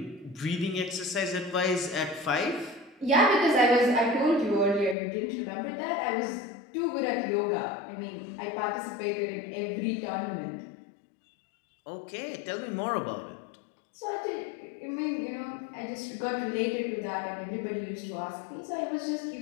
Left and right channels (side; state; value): right; drops out; at 5.0 s